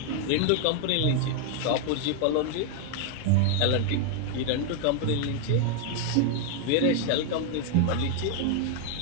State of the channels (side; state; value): both; different; correlation 0.00